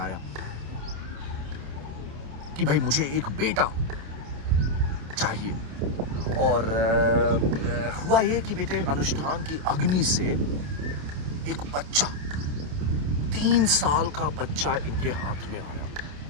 कि भाई मुझे एक बेटा चाहिए। और हुआ ये कि बेटे, अनुष्ठान की अग्नि से एक बच्चा, 3 साल का बच्चा इनके हाथ में आया।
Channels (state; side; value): late; left; 28 ms